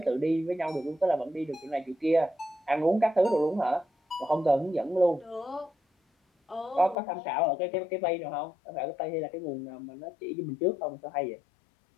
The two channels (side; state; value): right; drops out; at 7.0 s